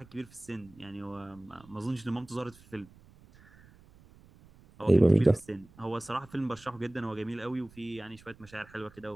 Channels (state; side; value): noise; right; rumble, 25 dB below the sound